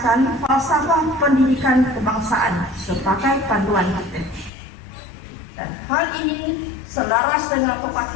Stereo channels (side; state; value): right; drops out; at 4.5 s